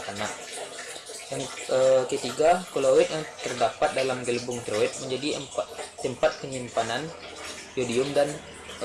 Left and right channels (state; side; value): identical; both; correlation 1.00